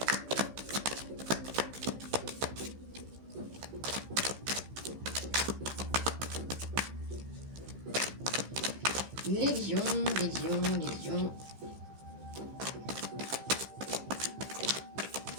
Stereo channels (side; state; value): left; late; 15 ms